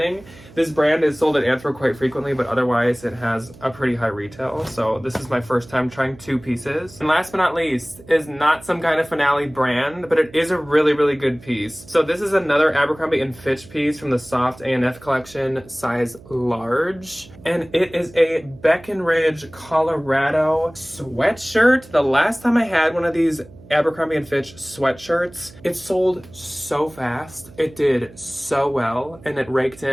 this brand is sold at Anthro quite frequently, but otherwise it has a pretty high retail. So this is my first time trying 2 pieces. And last but not least is not some kind of Finale brand, but it is a really, really good piece. So this is another Abercrombie & Fitch piece from the Soft A&F collection, size large. And it is a Breckenridge, Colorado sweatshirt. The last time I had one of these Abercrombie & Fitch sweatshirts, it sold so fast. It did so well, and it raked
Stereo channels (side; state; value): right; noise; hum, 21 dB below the sound